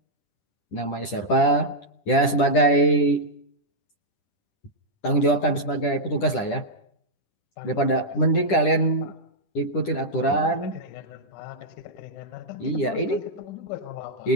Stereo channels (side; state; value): right; late; 10 ms